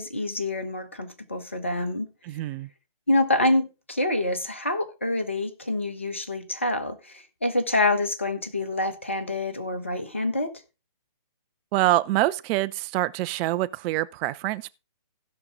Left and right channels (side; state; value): both; inverted; correlation -0.42